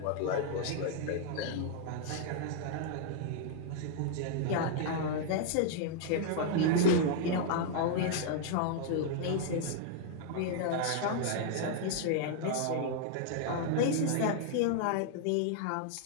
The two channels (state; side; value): different; both; correlation -0.01